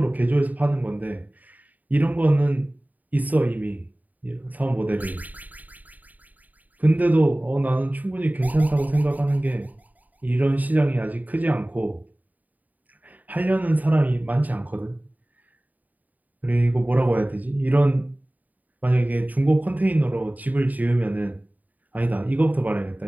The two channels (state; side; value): late; left; 0.078 ms